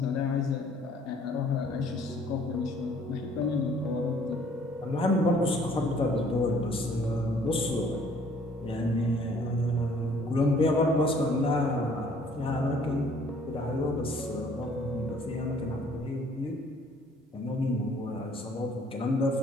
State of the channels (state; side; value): normal; both; correlation 0.58